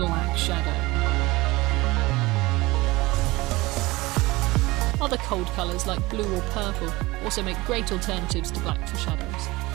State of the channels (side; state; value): left; quieter; 21.1 dB